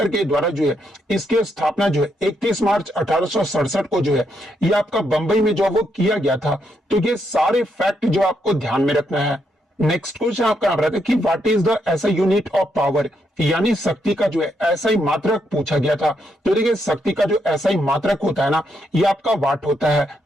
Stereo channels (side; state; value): both; normal; correlation 0.78